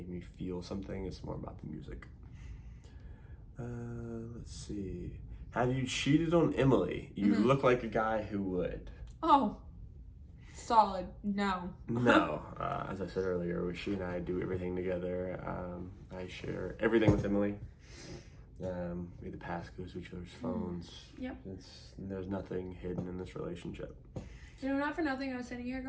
me feel something. It's more about the music. Let's see. Have you cheated on Emily? You look like a guy who would. Oh, solid. No. No. As I said earlier, she and I do everything together. I share everything with Emily. We have the passcodes to each other's phones. Yep. There's nothing hidden in this relationship. You know, not for nothing, I was sitting here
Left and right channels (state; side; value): identical; both; correlation 1.00